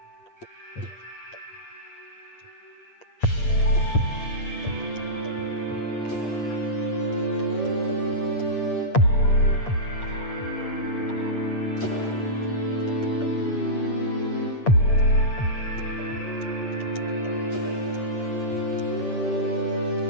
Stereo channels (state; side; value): late; right; 8.6 ms